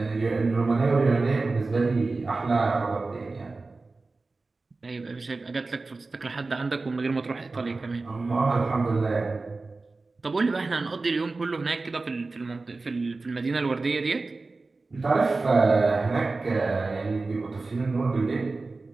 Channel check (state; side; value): quieter; left; 3.6 dB